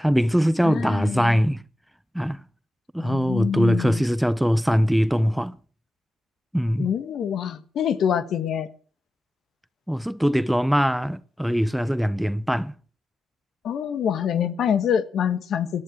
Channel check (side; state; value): both; normal; correlation 0.91